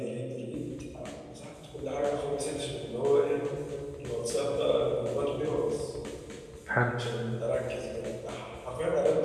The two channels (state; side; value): identical; both; correlation 1.00